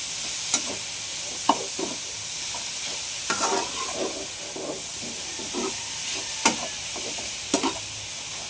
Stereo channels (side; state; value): both; identical; correlation 1.00